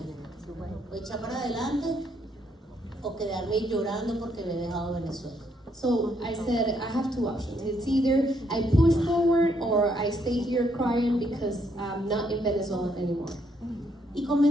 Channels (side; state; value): both; normal; correlation 0.73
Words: o echar para adelante o quedarme llorando porque me he dejado Venezuela. So I said, I have two options. It's either I push forward or I stay here crying because I'm not in Venezuela anymore. Y